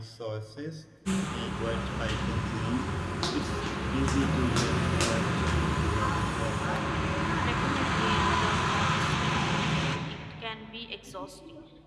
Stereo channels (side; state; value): both; identical; correlation 1.00